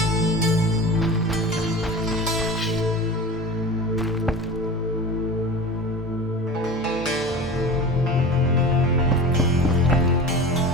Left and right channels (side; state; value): both; normal; correlation 0.33